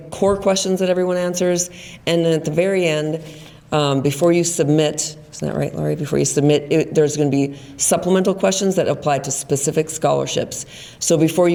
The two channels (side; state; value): both; identical; correlation 1.00